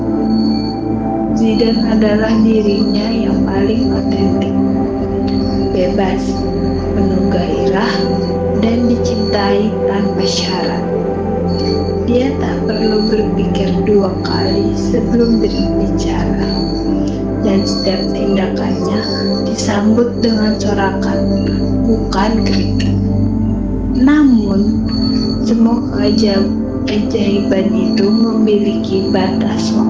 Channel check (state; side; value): identical; both; correlation 1.00